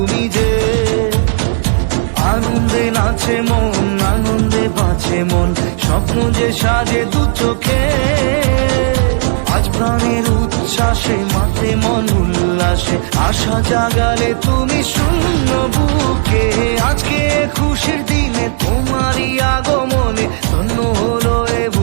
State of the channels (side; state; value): left; silent; digital silence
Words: যে। আনন্দে নাচে মন, আনন্দে বাঁচে মন, স্বপ্ন যে সাজে দু চোখে। আজ প্রাণের উচ্ছ্বাসে মাতে মন উল্লাসে, আশা জাগালে তুমি শূন্য বুকে। আজকে খুশির দিনে তোমারই আগমনে ধন্য হলো এ